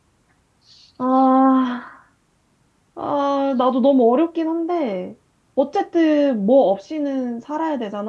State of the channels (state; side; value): identical; both; correlation 1.00